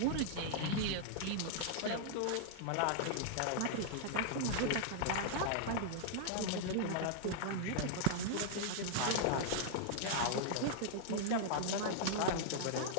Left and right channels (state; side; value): different; both; correlation -0.01